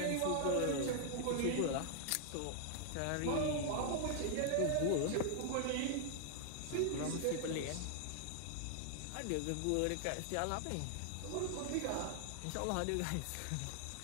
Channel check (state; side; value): different; both; correlation 0.00